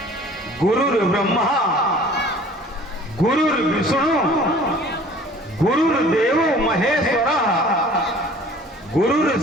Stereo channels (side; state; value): both; normal; correlation 0.49